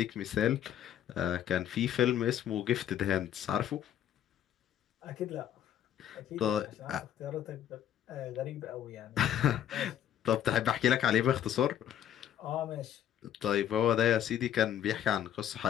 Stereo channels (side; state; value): right; quieter; 10.5 dB